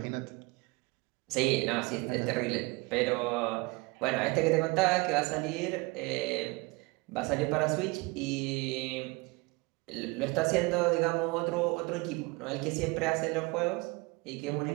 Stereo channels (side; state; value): left; quieter; 25.7 dB